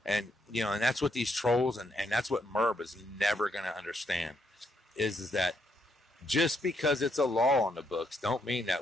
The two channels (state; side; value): normal; both; correlation 0.76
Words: And you know, and that's what these trolls and that's what Merb is never going to understand is that just because it's a law on the books don't mean